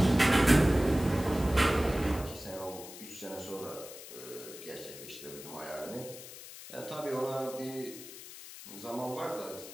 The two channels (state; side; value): noise; left; hiss, 14 dB below the sound